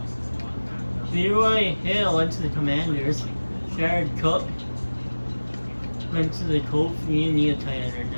Leroy Hill went to the Commanders. Jared Cook went to the Colts. We need a tight end right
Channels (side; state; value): both; inverted; correlation -1.00